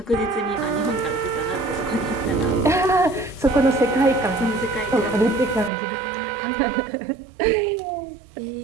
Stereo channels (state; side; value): drops out; left; at 5.7 s